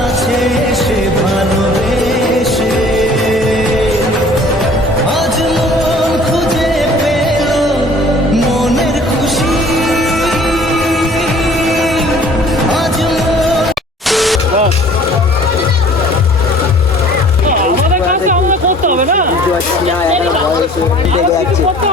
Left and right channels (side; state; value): both; normal; correlation 0.51